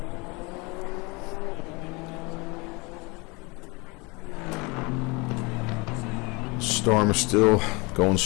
Storm is still going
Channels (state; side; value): quieter; right; 27.2 dB